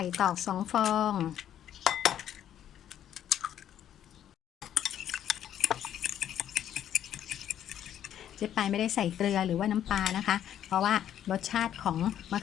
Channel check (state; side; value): quieter; right; 10.5 dB